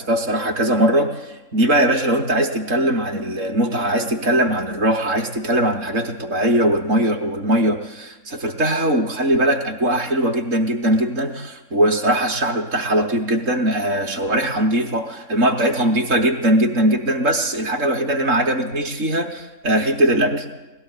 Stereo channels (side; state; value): left; late; 3.6 ms